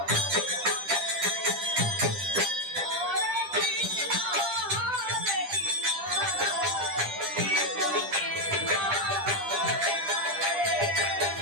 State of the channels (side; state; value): left; late; 10 ms